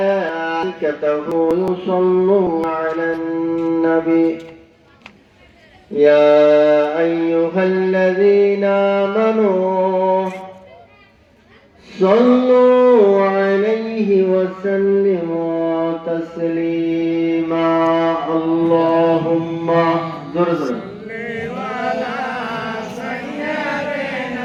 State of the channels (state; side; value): identical; both; correlation 1.00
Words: يصلون على النبي يا أيها الذين آمنوا صلوا عليه وسلموا تسليما اللهم زر